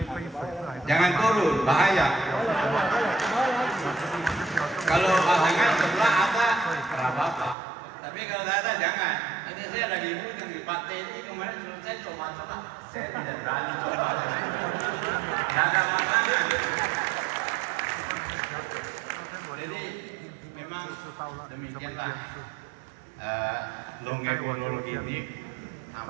Jangan turun, bahaya. Kalau pasangan sebelah ada, apa-apa. Tapi kalau tidak ada, jangan. Nanti saya lagi yang di Pak ini kemarin saya coba-coba. Saya tidak berani coba. Tidak ada pasangan. Jadi memang demikianlah longepologi ini.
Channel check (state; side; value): drops out; left; at 7.6 s